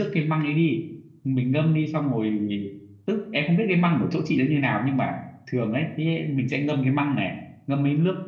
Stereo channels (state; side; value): identical; both; correlation 1.00